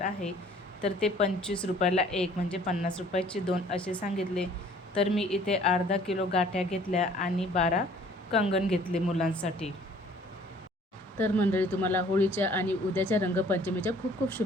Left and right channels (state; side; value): normal; both; correlation 0.55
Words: आहे तर ते 25 रुपयाला एक, म्हणजे 50 रुपयाचे दोन असे सांगितले। तर मी इथे अर्धा किलो गाठ्या घेतल्या आणि 12 कंगन घेतले मुलांसाठी। तर मंडळी, तुम्हाला होळीच्या आणि उद्याच्या रंगपंचमीच्या खूप खूप